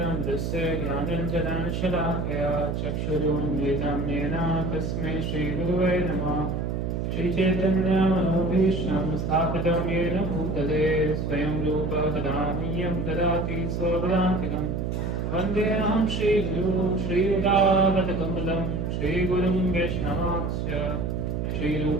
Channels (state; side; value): noise; right; hum, 1 dB below the sound